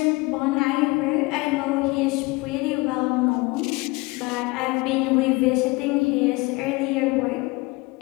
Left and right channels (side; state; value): right; quieter; 24.4 dB